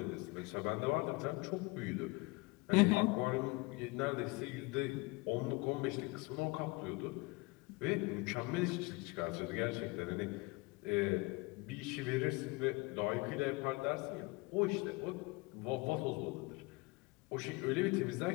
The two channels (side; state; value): right; quieter; 25.3 dB